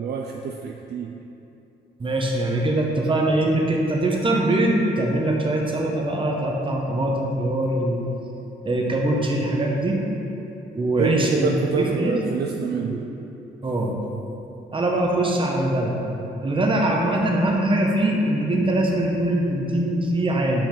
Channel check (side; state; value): both; normal; correlation 0.65